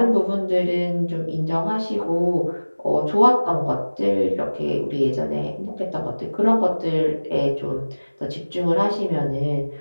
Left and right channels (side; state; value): both; inverted; correlation -1.00